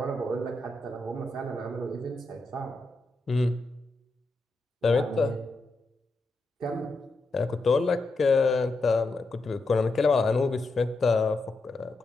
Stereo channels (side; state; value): right; quieter; 3.0 dB